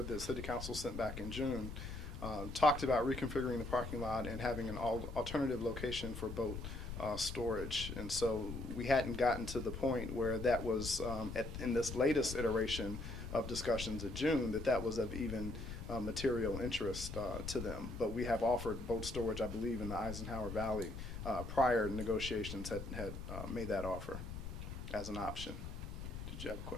that City Council sent back in June, talked about reconfiguring the parking lot and having an alternative location for boat storage. And so we hadn't gotten to the point where that was, in this latest iteration of discussions in June, that was of even material interest to them. But we have offered boat storage, I believe, in the Eisenhower Valley. Prior negotiations had made that offer as an option. Did you have a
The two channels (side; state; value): left; noise; rumble, 7 dB below the sound